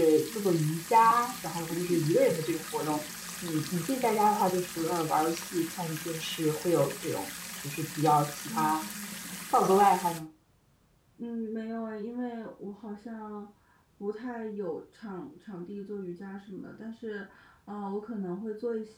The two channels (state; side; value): identical; both; correlation 1.00